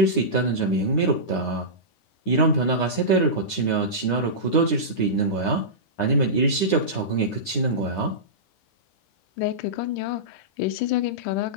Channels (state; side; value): late; right; 10 ms